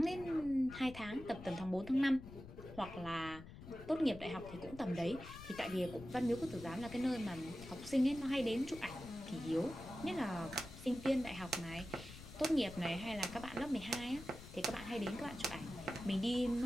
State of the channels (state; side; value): noise; left; rumble, 14 dB below the sound